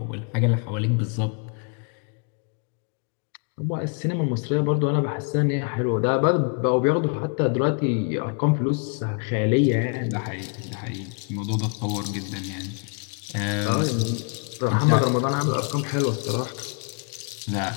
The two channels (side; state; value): right; quieter; 39.0 dB